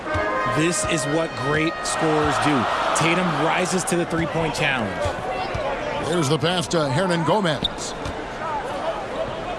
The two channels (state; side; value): identical; both; correlation 1.00